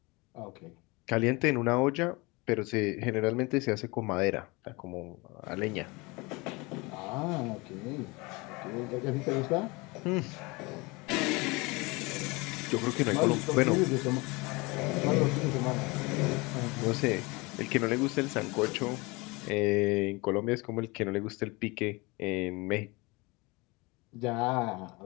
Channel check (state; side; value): quieter; right; 25.4 dB